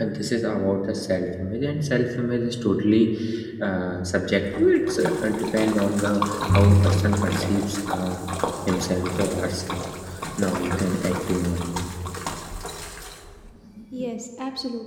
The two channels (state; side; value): identical; both; correlation 1.00